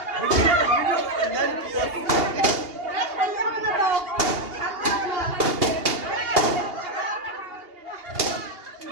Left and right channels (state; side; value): late; left; 2.8 ms